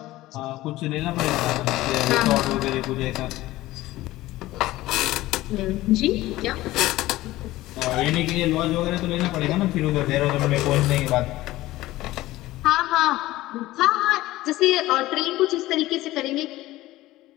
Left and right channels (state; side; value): quieter; right; 17.1 dB